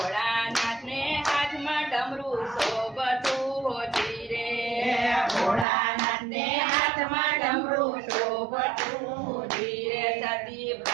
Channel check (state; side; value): drops out; left; at 5.7 s